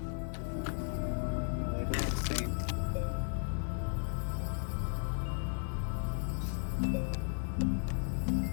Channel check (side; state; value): right; silent; 54 dB below the other